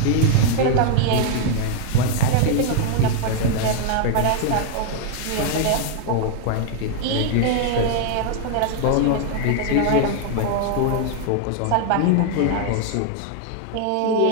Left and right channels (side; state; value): both; different; correlation 0.00